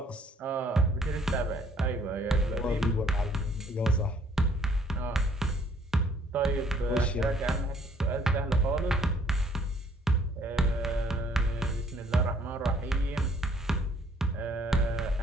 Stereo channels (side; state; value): both; normal; correlation 0.61